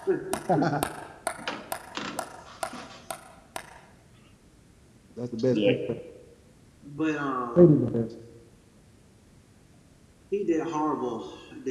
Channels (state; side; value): identical; both; correlation 1.00